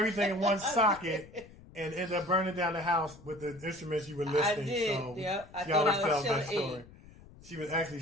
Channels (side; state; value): left; noise; rumble, 21 dB below the sound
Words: in one socket and ended up burning down the house with the instruments you were listing. I did. So I she always tells Sheila that story. She was actually